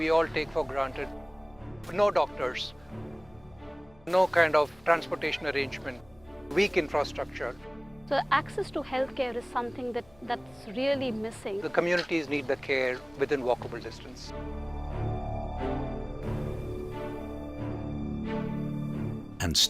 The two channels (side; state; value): left; noise; hum, 28 dB below the sound